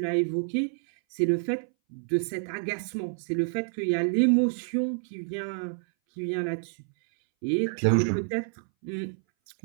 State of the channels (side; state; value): left; silent; 59 dB below the other